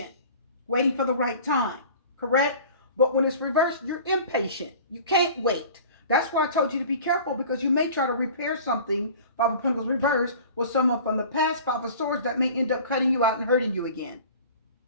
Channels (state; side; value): inverted; both; correlation -0.43